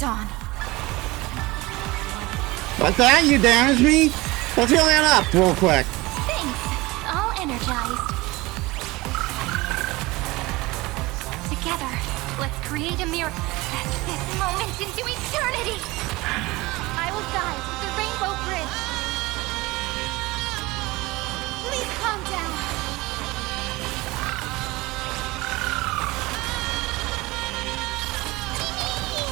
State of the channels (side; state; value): left; quieter; 21.4 dB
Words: What's that? You damaged me? Let's heal that up real quick. Thanks. All energized. Together, let's create a mirror. This moment into eternity. I will guide the Rainbow Bridge. Please calm down.